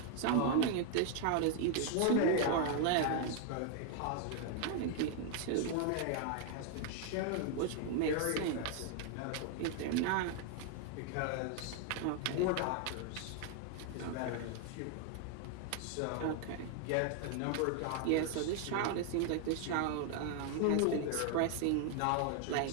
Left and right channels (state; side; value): different; both; correlation 0.00